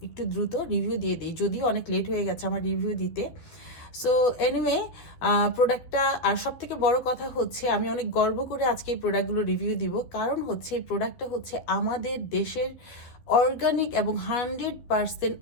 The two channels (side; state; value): right; late; 12 ms